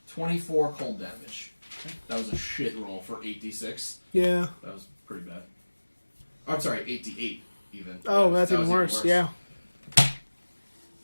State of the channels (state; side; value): inverted; both; correlation -1.00